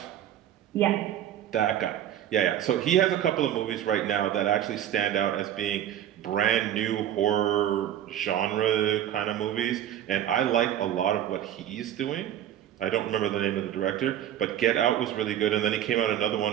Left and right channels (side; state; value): left; quieter; 11.1 dB